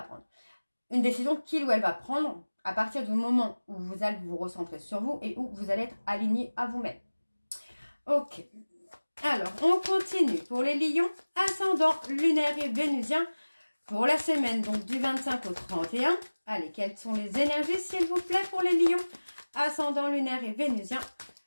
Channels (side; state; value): both; inverted; correlation -1.00